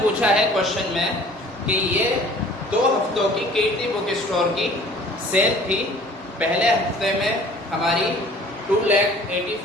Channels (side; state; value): both; normal; correlation 0.50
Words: पूछा है क्वेश्चन में कि ये 2 हफ्तों की कीर्ति बुक स्टोर की सेल थी। पहले हफ्ते में हमारी